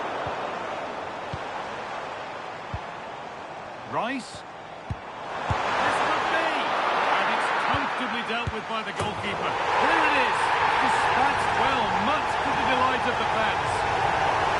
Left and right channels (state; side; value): identical; both; correlation 1.00